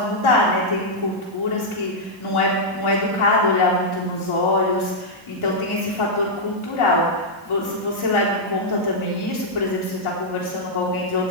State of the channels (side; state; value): both; normal; correlation -0.05